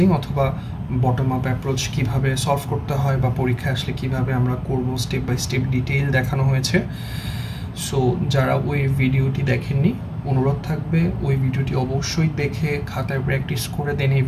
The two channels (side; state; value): both; identical; correlation 1.00